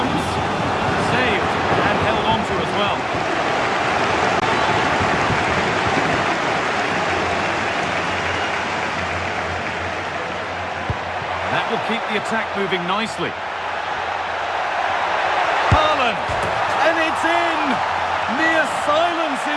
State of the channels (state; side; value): identical; both; correlation 1.00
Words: Saved and held on to as well. That will keep the attack moving nicely. Haaland, and it's in! Near silence